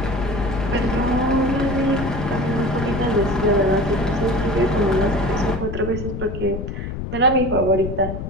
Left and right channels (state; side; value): noise; left; rumble, 6 dB below the sound